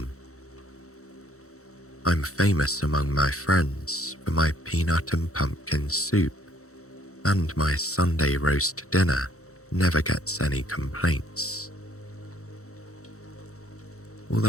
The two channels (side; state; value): right; late; 0.64 ms